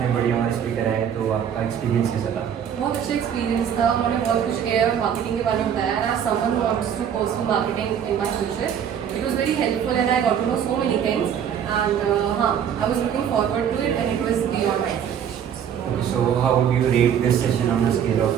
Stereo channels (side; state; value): left; quieter; 8.6 dB